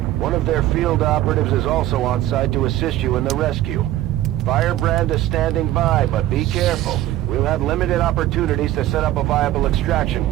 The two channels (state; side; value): quieter; left; 14.4 dB